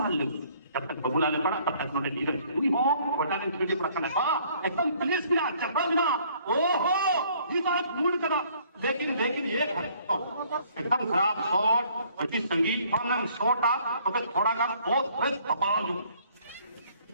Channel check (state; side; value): inverted; both; correlation -0.61